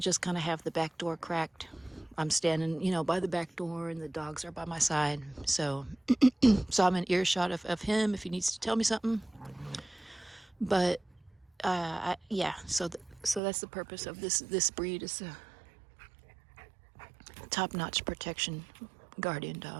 kind of have the back door cracked. I'm standing, you know, by the back door and the dogs are by my side. So I'm in earshot of him if he needs to tell me something. But yeah, so that's the purpose of this breed, is a top-notch protection guardian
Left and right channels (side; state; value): left; drops out; at 13.4 s